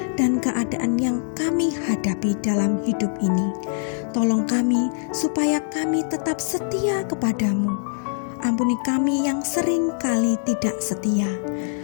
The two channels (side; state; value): right; silent; digital silence